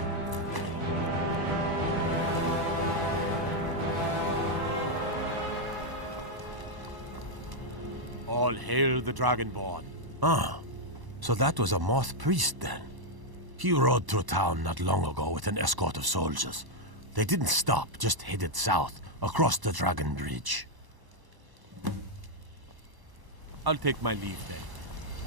All hail the Dragonborn. Ah, so that was a moth priest then. He rode through town not long ago with an escort of soldiers. They didn't stop, just headed south, across the Dragon Bridge. I'll take my leave then.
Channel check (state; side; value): late; left; 1.0 ms